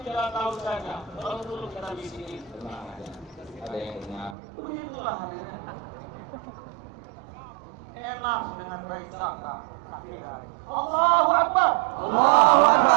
tidak tahu saja. Kalau dulu kita bisikin, tenang aja. Ada yang dengar. Begitulah harinya. Enak dengan baik sangka. Allahu Akbar. Allahu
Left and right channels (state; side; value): drops out; left; at 4.4 s